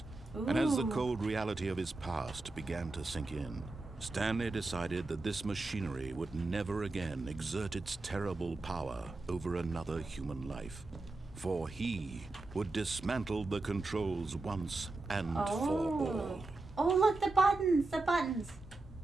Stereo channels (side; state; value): left; quieter; 3.2 dB